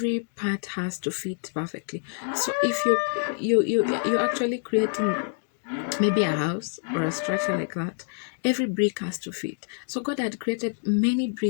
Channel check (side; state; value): right; silent; digital silence